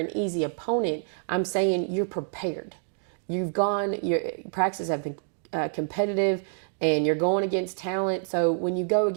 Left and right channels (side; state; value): left; silent; 60 dB below the other